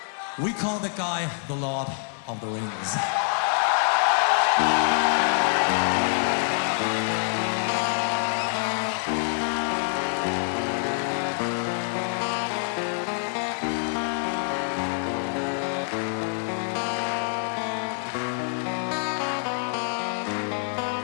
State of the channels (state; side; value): silent; right; 61 dB below the other